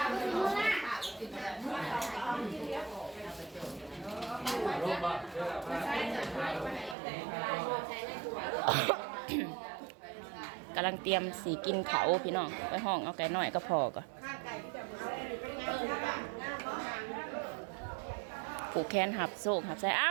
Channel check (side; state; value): left; drops out; at 7.0 s